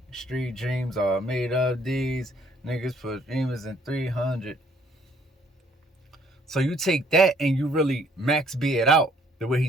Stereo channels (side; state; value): both; normal; correlation 0.63